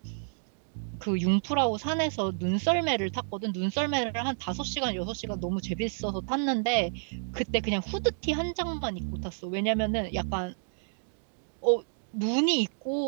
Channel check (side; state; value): left; silent; digital silence